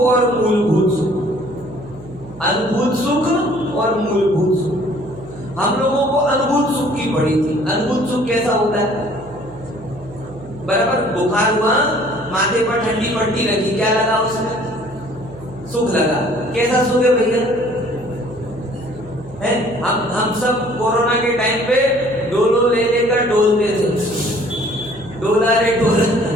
मूलभूत सुख। अनुभूत सुख और मूलभूत सुख। हम लोगों को अनुभूत सुख की पड़ी थी। अनुभूत सुख कैसा होता है? बराबर बुखार हुआ, माथे पर ठंडी पट्टी रखी, क्या लगा उसमें? सुख लगा। कैसा सुख है भैया? हम सब कोरोना के टाइम पे डोलो ले लेकर डोलते थे, डोला रे डोला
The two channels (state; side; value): noise; right; hum, 19 dB below the sound